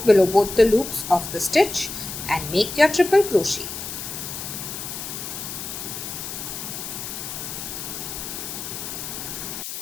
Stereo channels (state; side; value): noise; left; hiss, 7 dB below the sound